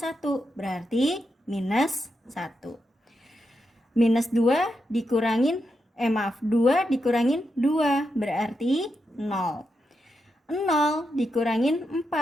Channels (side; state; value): both; normal; correlation 0.85